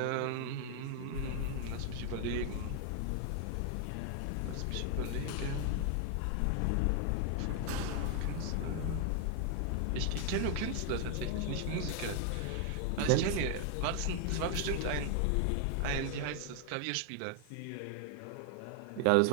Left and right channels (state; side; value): different; both; correlation 0.00